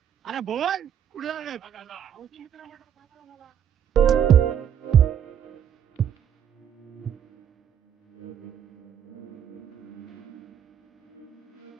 अरे बोल कुठे झाले?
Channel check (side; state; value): left; quieter; 9.1 dB